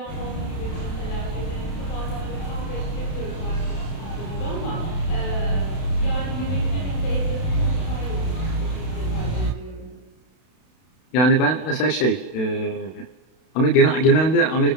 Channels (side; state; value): right; late; 32 ms